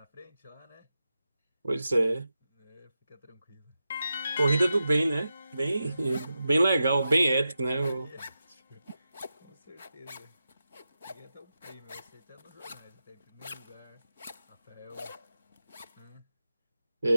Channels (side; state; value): both; inverted; correlation -0.90